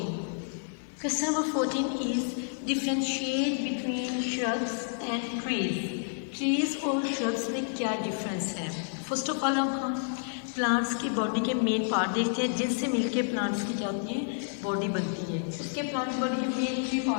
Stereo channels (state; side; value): silent; right; 58 dB below the other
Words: Question number 14 is differentiate between shrubs and trees और श्रब्स में क्या डिफरेंस है. फर्स्ट ऑफ ऑल हम plants की body के main part देखते हैं जिनसे मिलके प्लांट्स की क्या होती है, बॉडी बनती है. उसके प्लांट की बॉडी के मेन 3